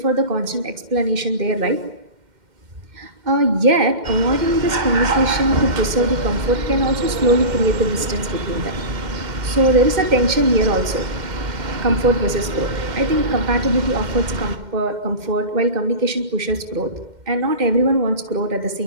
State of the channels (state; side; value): late; left; 2.1 ms